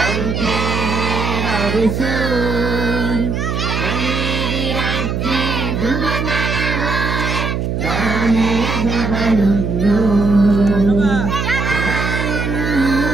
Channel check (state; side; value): noise; right; hum, 1 dB below the sound